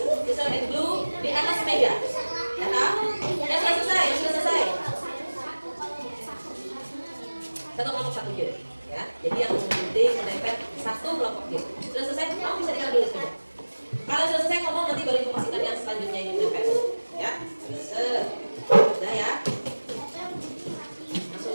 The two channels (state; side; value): inverted; both; correlation -1.00